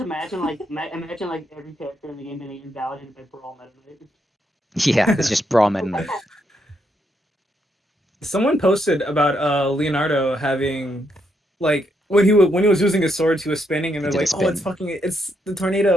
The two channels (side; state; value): both; normal; correlation 0.78